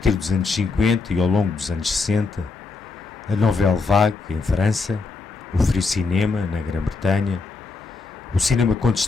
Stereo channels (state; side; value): quieter; right; 4.2 dB